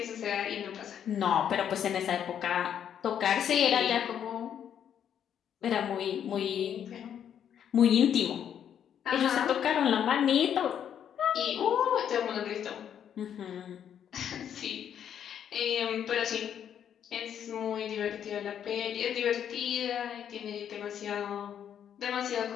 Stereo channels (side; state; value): right; quieter; 9.1 dB